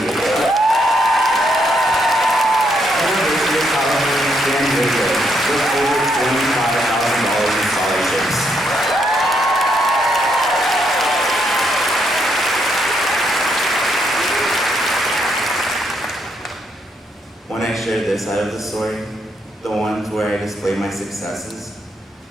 University of California, San Diego, with over $25,000 in scholarships. When I share this side of the story, the ones where I display my successes,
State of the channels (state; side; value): normal; both; correlation 0.76